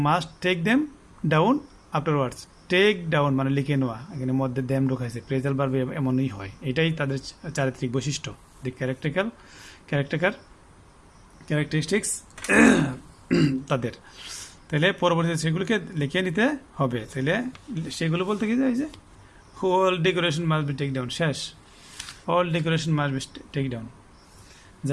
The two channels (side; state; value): both; identical; correlation 1.00